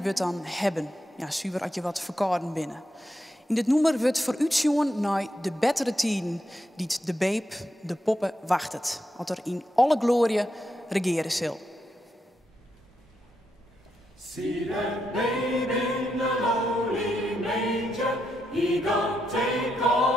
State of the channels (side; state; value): both; normal; correlation 0.83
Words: wordt dan hebben. Ja, zuiver als je wat verkouden binnen. In dit nummer wordt vooruitzien naar de betere tijden die de babe, de poppen, wachtet. Wat er in alle glorie regeren zal. See that babe in the lowly manger, he gon' take